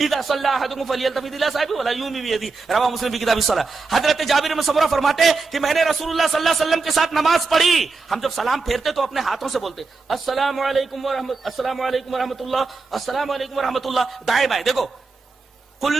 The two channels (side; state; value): left; quieter; 4.1 dB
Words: صلى احدكم فليلتفت الى صاحبه ولا يومي بيده رواه مسلم في كتاب الصلاة۔ حضرت جابر بن سمرہ فرماتے ہیں کہ میں نے رسول اللہ صلی اللہ علیہ وسلم کے ساتھ نماز پڑھی، ہم جب سلام پھیرتے تو اپنے ہاتھوں سے بولتے السلام علیکم ورحمۃ السلام علیکم ورحمۃ اللہ السلام علیکم ورحمۃ اللہ، دائیں بائیں۔ دیکھو